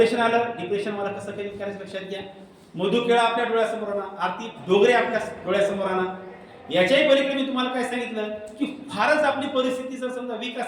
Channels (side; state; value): both; identical; correlation 1.00